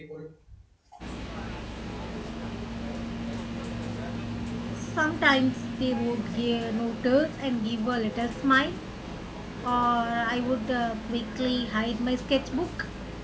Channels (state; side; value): identical; both; correlation 1.00